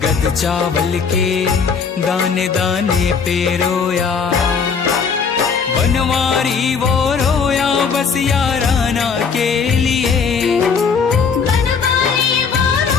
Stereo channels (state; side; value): quieter; right; 5.9 dB